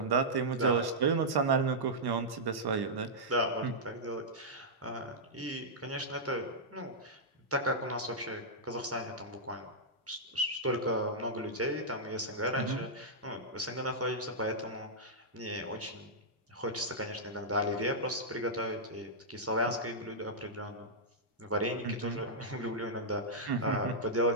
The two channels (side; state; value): both; normal; correlation -0.10